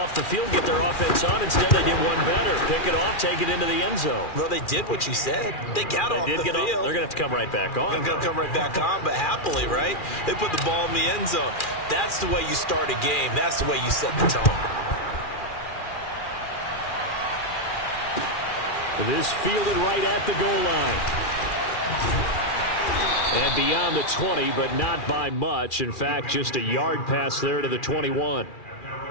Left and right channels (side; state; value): right; late; 2.4 ms